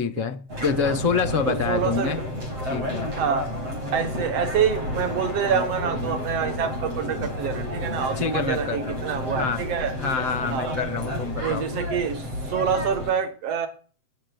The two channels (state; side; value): late; left; 7.7 ms